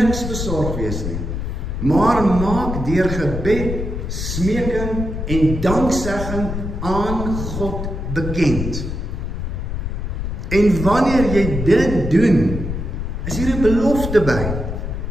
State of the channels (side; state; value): left; noise; rumble, 4 dB below the sound